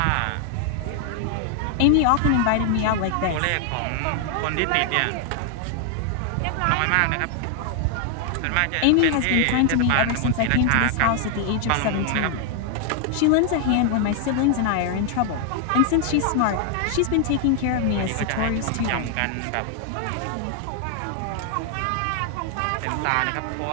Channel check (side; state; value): both; different; correlation 0.00